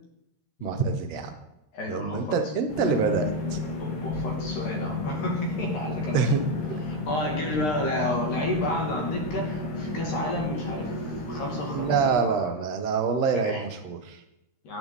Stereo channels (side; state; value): right; late; 13 ms